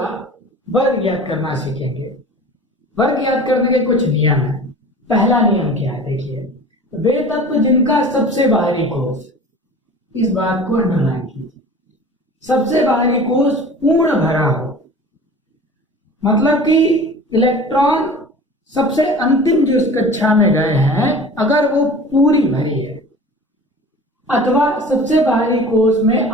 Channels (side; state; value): both; normal; correlation 0.40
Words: वर्ग ज्ञात करना सीखेंगे। वर्ग ज्ञात करने के कुछ नियम है। पहला नियम क्या है? देखिए, वे तत्व जिनका सबसे बाहरी कोष, इस बात को अंडरलाइन कीजिए, सबसे बाहरी कोष पूर्ण भरा हो, मतलब कि इलेक्ट्रॉन सबसे अंतिम जो इस कक्षा में गए हैं अगर वो पूरी भरी है, अथवा सबसे बाहरी कोष में